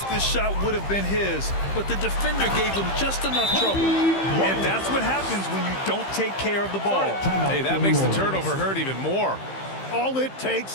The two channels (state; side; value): late; right; 15 ms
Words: this shot would have been his, but the defender gave him just enough trouble. And that's what happens when you don't take care of the ball. Hey, that makes the turnover hurt even more. All it